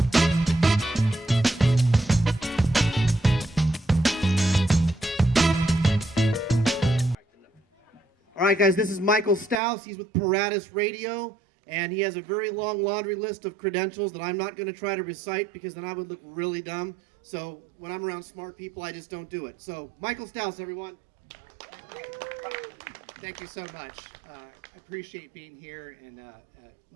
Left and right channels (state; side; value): drops out; left; at 9.6 s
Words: All right, guys, this is Mikel Stous. He's with Paratus Radio, and he has a very long laundry list of credentials that I'm not going to try to recite because then I would look really dumb. So when I'm around smart people, I just don't do it. So Mikel Stous, everyone. Thank you so much. I appreciate being here and